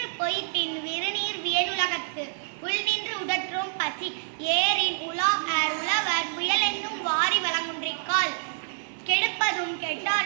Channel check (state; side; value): silent; left; digital silence